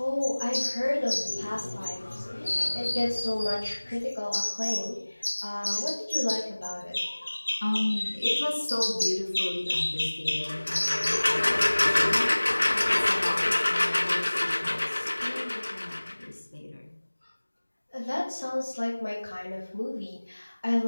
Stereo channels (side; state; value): both; inverted; correlation -1.00